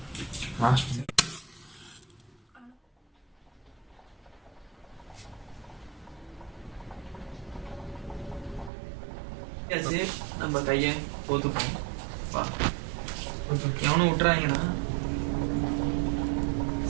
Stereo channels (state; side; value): drops out; left; at 8.7 s